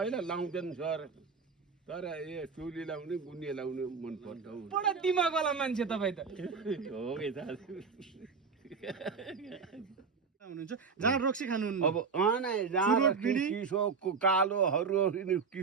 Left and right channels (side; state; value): left; quieter; 5.3 dB